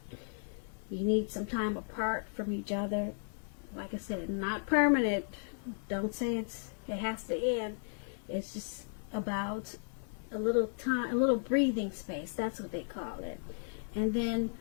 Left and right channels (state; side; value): silent; right; digital silence